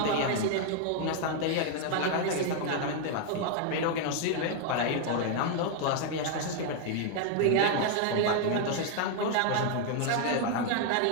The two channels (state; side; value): different; both; correlation 0.00